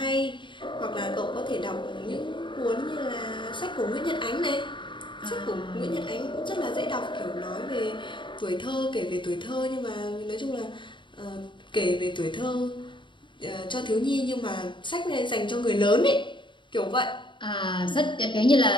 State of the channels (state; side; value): late; right; 0.23 ms